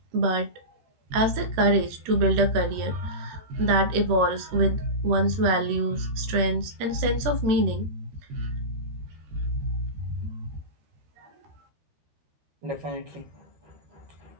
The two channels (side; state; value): left; late; 13 ms